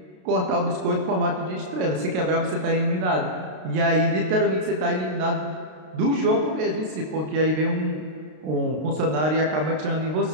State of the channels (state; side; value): late; left; 32 ms